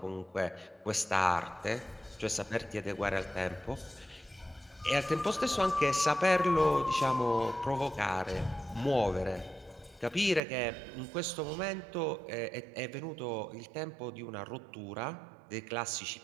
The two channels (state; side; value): drops out; left; at 10.4 s